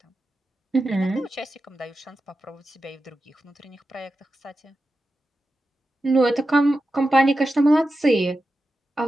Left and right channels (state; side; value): normal; both; correlation 0.91